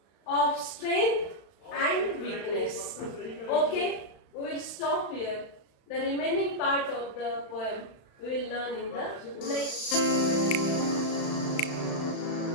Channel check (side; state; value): right; late; 35 ms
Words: of strength and weakness. Okay, we will stop here. The remaining part of the poem we will learn in the next